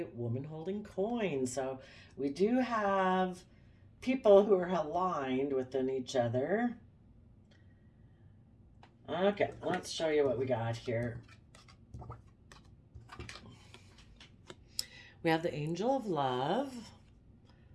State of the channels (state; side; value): identical; both; correlation 1.00